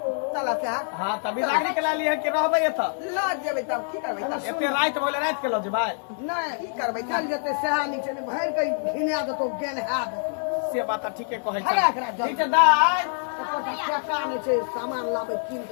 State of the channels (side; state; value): right; silent; digital silence